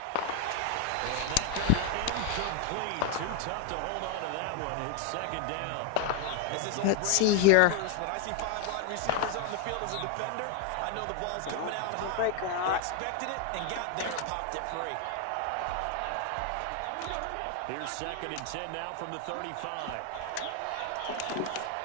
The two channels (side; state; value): both; different; correlation 0.01